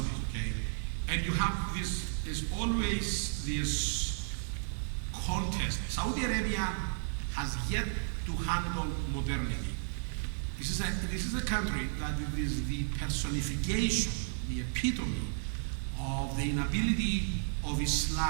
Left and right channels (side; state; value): left; silent; digital silence